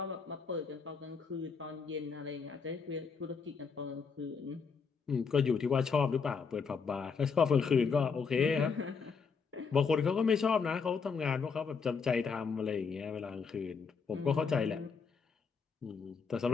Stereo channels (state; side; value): quieter; right; 5.5 dB